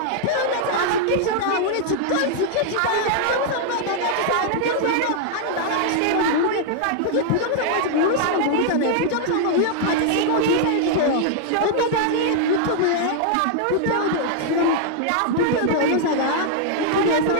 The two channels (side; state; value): both; different; correlation -0.01